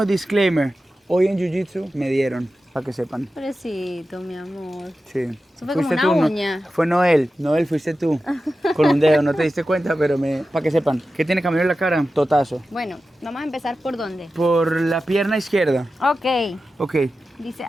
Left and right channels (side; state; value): both; normal; correlation 0.93